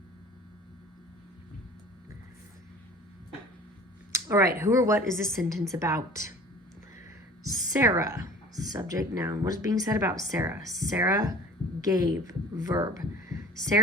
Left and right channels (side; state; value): both; normal; correlation 0.44